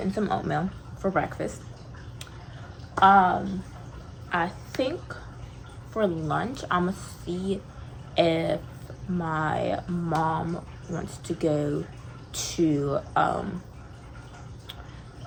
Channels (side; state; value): both; identical; correlation 1.00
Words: some oatmeal for breakfast. I think for lunch, I'm gonna see if my mom wants to go to